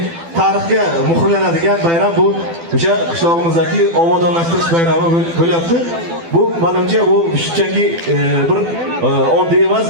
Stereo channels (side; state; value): left; late; 12 ms